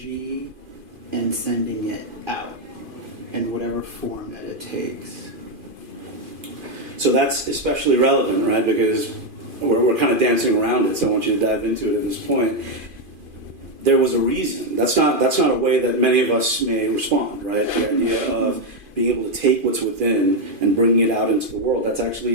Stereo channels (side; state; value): left; late; 2.5 ms